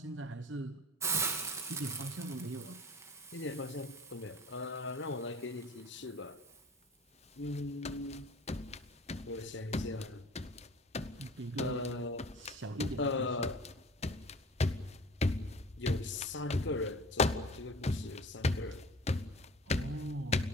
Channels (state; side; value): normal; both; correlation 0.42